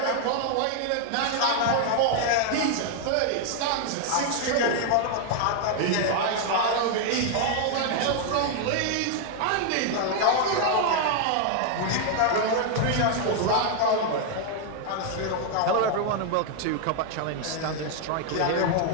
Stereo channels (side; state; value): both; different; correlation 0.00